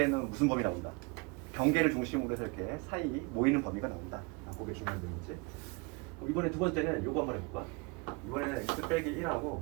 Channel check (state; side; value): quieter; left; 29.2 dB